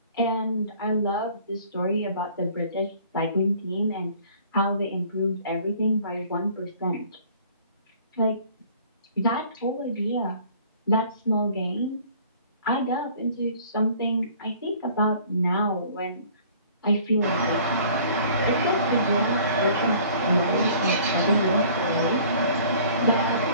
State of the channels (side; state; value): both; inverted; correlation -0.52